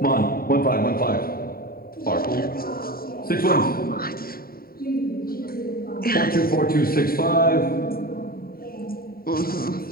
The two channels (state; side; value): late; right; 0.43 ms